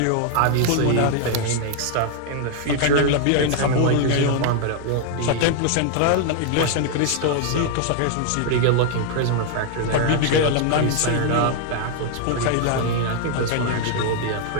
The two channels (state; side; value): different; both; correlation 0.00